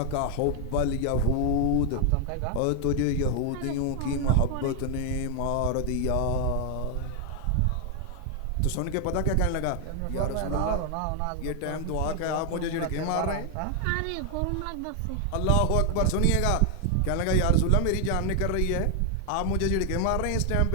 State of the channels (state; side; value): different; both; correlation 0.00